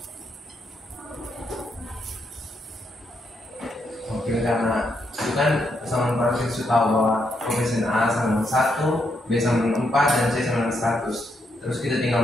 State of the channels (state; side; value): normal; both; correlation 0.79